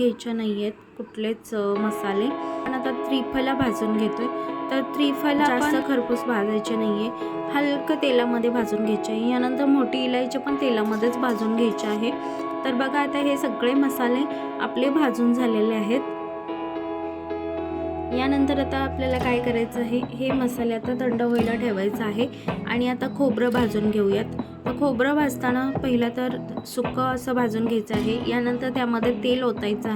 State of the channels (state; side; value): identical; both; correlation 1.00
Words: नाही आहेत कुठलेच मसाले. पण आता त्रिफला भाजून घेतोय. तर त्रिफला जास्त खरपूस भाजायचे नाही आहे, हलकं तेलामध्ये भाजून घ्यायचे आहे. यानंतर मोठी इलायची पण तेलामध्येच भाजून घ्यायची आहे. तर बघा आता हे सगळे मसाले आपले भाजून झालेले आहेत. यानंतर आता आपल्याला काय करायचं आहे, हे मसाले आता थंड व्हायला ठेवायचं आहे. आणि आता खोबरं भाजून घेऊयात. तर खोबरं भाजताना पहिलं तर सुकं असं भाजून घ्यायचं आहे. यानंतर त्यामध्ये तेल ओतायचं